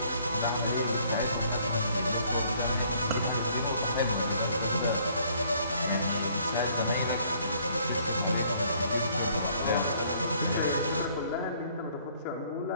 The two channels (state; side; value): inverted; both; correlation -0.62